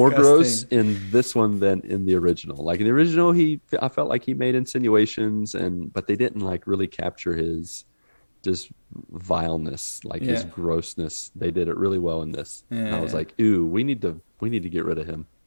gross disgusting. in this one than in the original. Like in the original, I felt like he made insinuations, but they didn't like really capture his just vileness, like his Yeah, grossness. They did it really well in this, and I was yeah, like, ooh, we need to get rid of him.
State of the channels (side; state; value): both; inverted; correlation -1.00